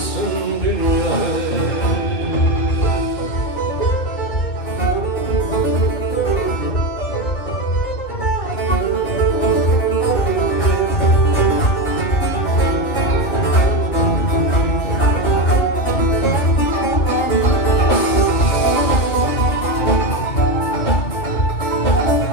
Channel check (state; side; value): late; right; 2.8 ms